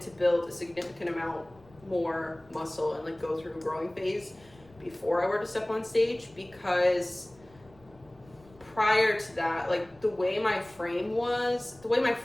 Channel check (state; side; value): noise; left; rumble, 26 dB below the sound